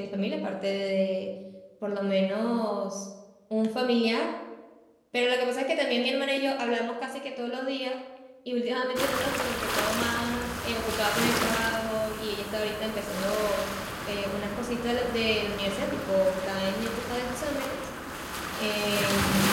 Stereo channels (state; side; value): identical; both; correlation 1.00